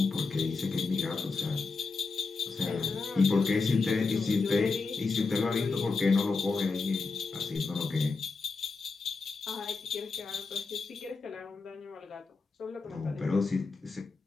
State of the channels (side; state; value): right; quieter; 4.2 dB